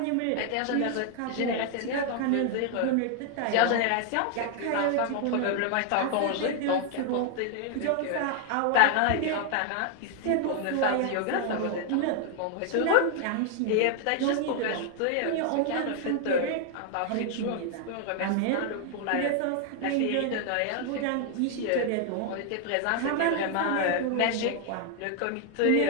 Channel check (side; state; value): both; different; correlation 0.00